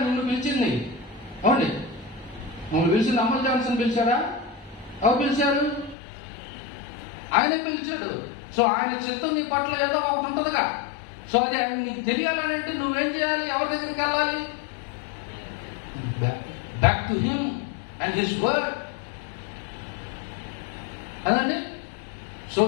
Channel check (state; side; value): drops out; right; at 6.0 s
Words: నిన్ను పిలిచింది. అవునండి, మమ్మల్ని పిలిచింది అమల్ జాన్సన్ పిలిచారా? ఎవరు పిలిచారు? ఆయనే పిలిచాడు. సో ఆయన చిత్తం నీ పట్ల ఏదో ఒకటి ఉంటుందిగా. సో అది ఆయన నీకు తెలియాలని అంటే నువ్వేం చేయాలి? ఎవరి దగ్గరికి వెళ్ళాలి? back to him and his word. అదండి. సో